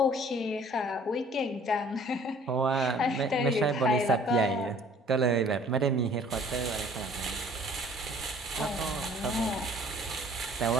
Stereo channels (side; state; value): both; normal; correlation 0.54